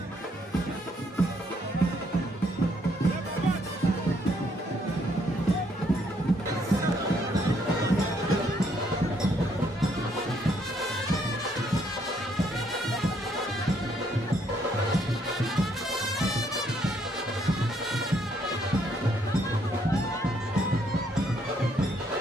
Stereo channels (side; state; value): both; normal; correlation 0.70